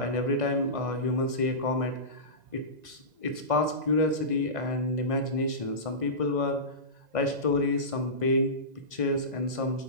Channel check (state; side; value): late; left; 2.0 ms